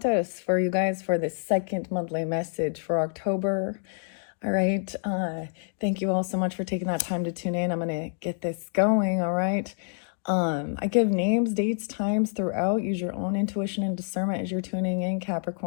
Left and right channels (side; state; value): right; silent; digital silence